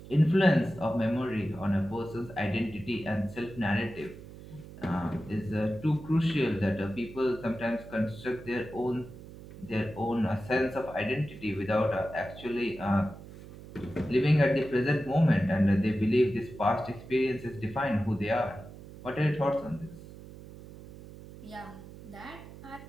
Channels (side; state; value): right; noise; hum, 16 dB below the sound